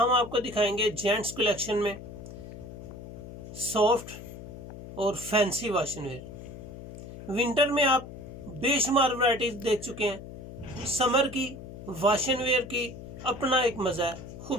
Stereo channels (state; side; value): noise; left; hum, 12 dB below the sound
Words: आपको दिखाएंगे जेंट्स कलेक्शन में सॉफ्ट और फैंसी वाशन वेयर। विंटर में आप बेशुमार वैरायटीज देख चुके हैं। समर की वाशन वेयर की अपना एक मज़ा है,